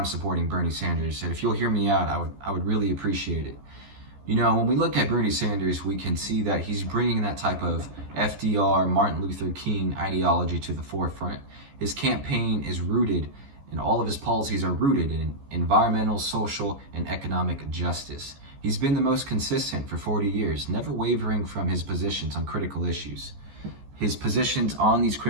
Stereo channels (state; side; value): late; left; 14 ms